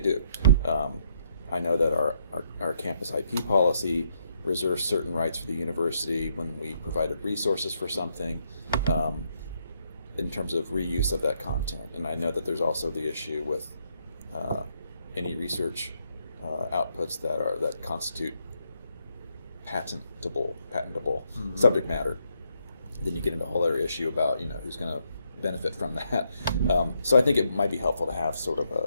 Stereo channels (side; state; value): both; inverted; correlation -0.75